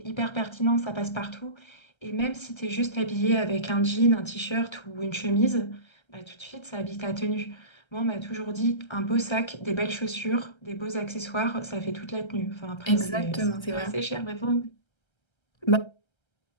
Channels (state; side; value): late; right; 1.3 ms